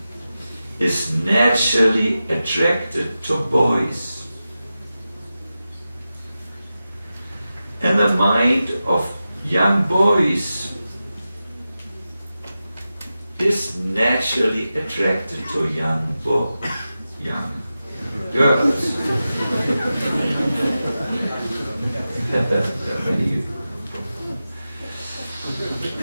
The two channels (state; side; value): inverted; both; correlation -0.93